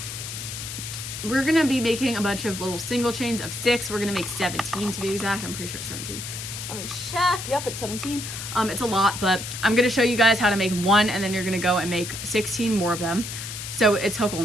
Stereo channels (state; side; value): noise; left; hiss, 8 dB below the sound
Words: we're gonna be making a bunch of little single chains of 6. We're gonna make 17 to be exact. I'm pretty sure it's 17. Let me check. Yep, it's 17. It's a lot, but I'm gonna show you guys how to make 1, and then you're gonna go and make 16 more of them. So it's hook